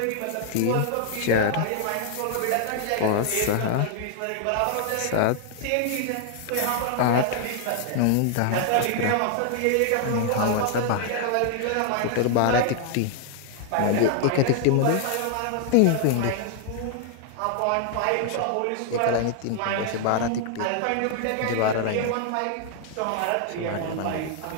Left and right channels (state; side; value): different; both; correlation 0.00